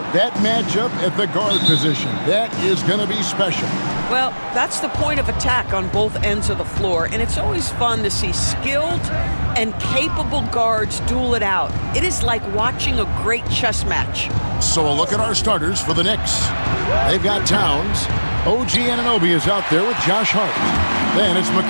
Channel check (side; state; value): both; inverted; correlation -1.00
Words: that matchup at the guard position. That is going to be special. Well, that's the point of attack on both ends of the floor, and it's always fun to see skilled and capable guards duel it out. It is like watching a great chess match. So a look at our starters for the Knicks. They've got Towns. OG Anunoby is out there with Josh Hart. Then it's